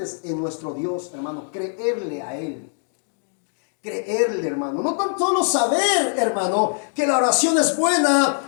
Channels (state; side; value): silent; right; digital silence